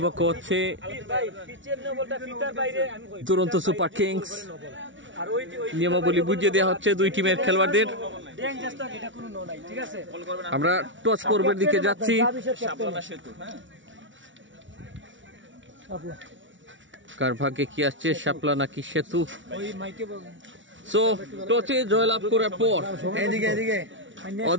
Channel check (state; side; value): late; left; 0.56 ms